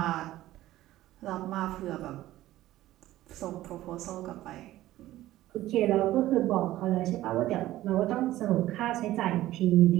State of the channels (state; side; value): quieter; left; 15.2 dB